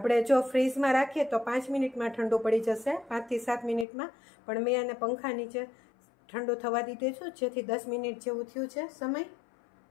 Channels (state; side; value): drops out; right; at 3.9 s